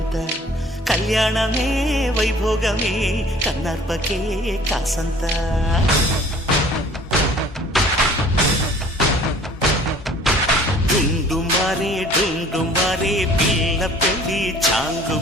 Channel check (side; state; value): both; normal; correlation 0.52